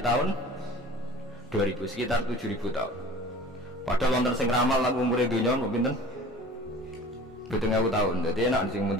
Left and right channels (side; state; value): both; normal; correlation 0.43